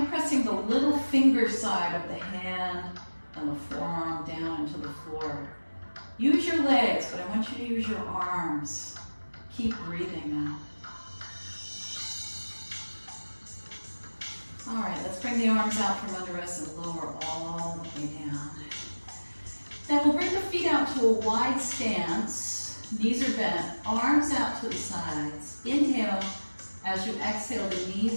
of pressing the little finger side of the hand and the forearm down into the floor. Use your legs, but I want you to use your arms. Keep breathing now. All right, let's bring the arms out from under us and lower all the way down. Then we'll bring the feet out to a wide stance. Knees are bent, arms out to the sides. Inhale. As you exhale, the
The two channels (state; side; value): inverted; both; correlation -1.00